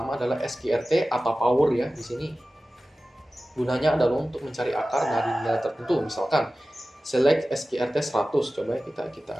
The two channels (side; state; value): both; normal; correlation 0.96